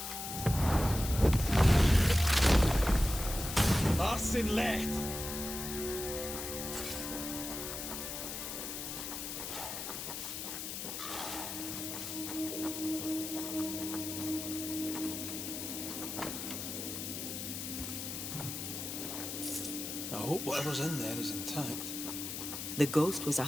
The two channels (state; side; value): noise; left; hiss, 6 dB below the sound